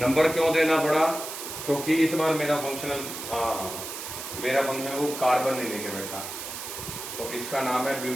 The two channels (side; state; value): right; noise; hiss, 8 dB below the sound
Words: क्यों देना पड़ा? क्योंकि इस बार मेरा फंक्शनल, मेरा फंक्शनल वो कार्बन नहीं लेके बैठा, तो इसका नाम है